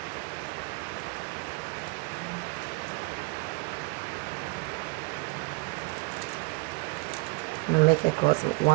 I'm gonna make a cross with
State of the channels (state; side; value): quieter; left; 29.5 dB